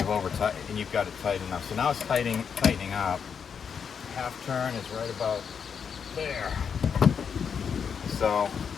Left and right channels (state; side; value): quieter; right; 6.8 dB